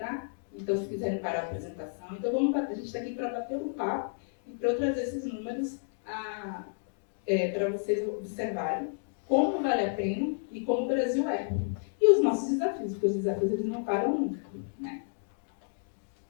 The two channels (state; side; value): silent; right; digital silence